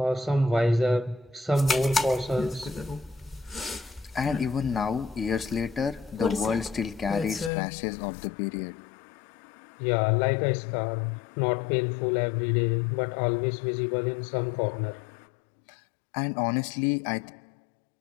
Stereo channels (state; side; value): drops out; right; at 7.5 s